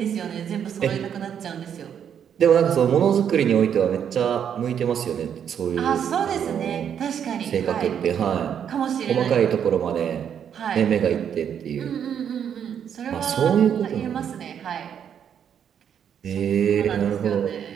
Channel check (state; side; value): quieter; left; 8.5 dB